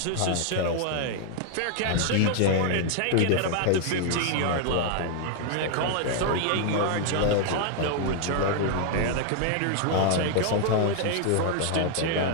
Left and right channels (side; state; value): both; different; correlation 0.00